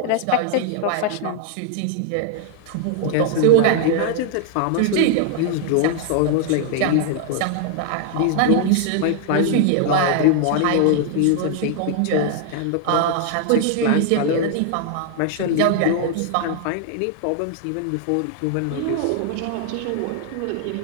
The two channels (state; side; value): different; both; correlation 0.00